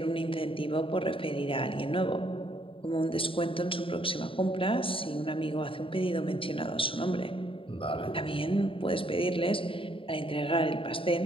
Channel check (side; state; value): right; late; 0.26 ms